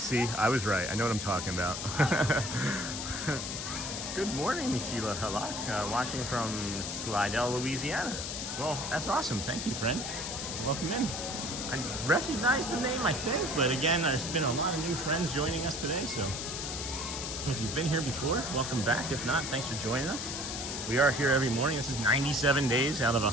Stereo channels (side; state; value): left; noise; hiss, 5 dB below the sound